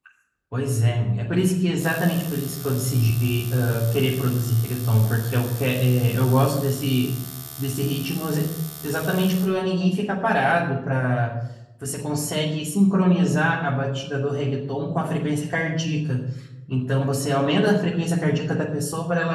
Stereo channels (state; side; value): identical; both; correlation 1.00